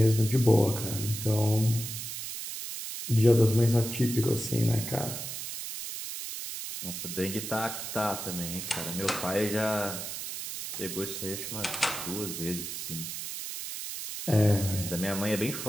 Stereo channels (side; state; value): right; noise; hiss, 6 dB below the sound